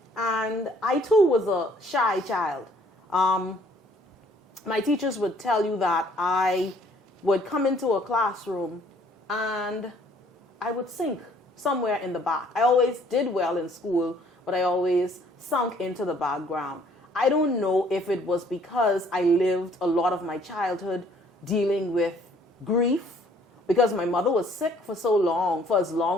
And I too was a shy child. My teachers would tell you that I would come into a classroom and I would sink somewhere in the back. I always did well in school, but I always sunk into the background. I don't know if it was because I lived a lot of my childhood dealing with grief, because my mother was sick for so long, for as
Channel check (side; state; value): both; normal; correlation 0.60